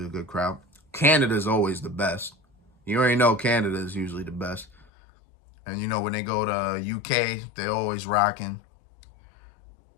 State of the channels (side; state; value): right; drops out; at 4.9 s